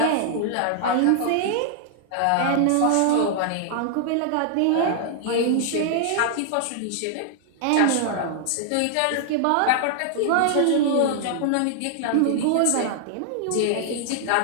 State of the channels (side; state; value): both; different; correlation -0.01